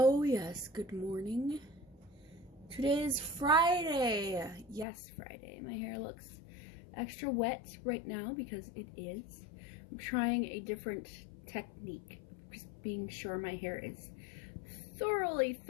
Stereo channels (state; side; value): drops out; right; at 4.9 s